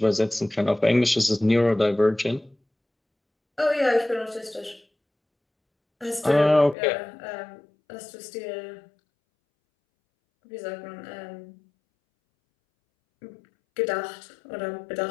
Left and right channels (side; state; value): right; drops out; at 6.8 s